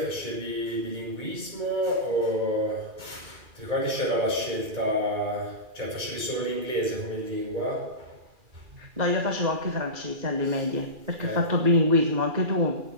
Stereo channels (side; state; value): left; late; 2.4 ms